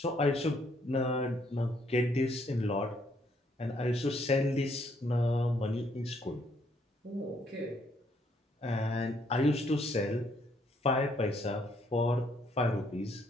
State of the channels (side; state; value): both; normal; correlation 0.70